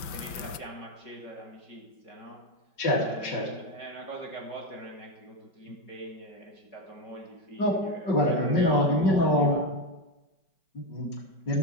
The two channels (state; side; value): late; right; 5.2 ms